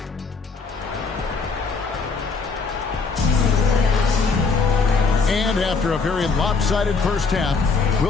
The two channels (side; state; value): right; quieter; 4.6 dB